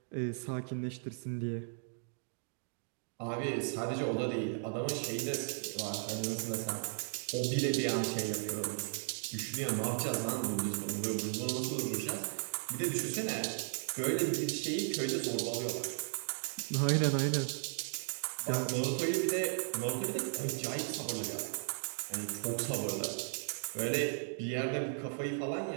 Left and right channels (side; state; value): left; silent; digital silence